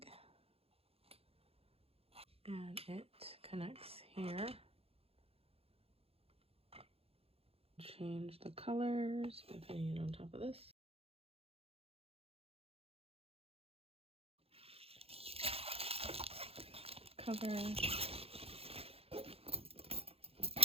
And it connects here. Change the colors by putting it on top of this. Cover.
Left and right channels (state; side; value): late; left; 0.28 ms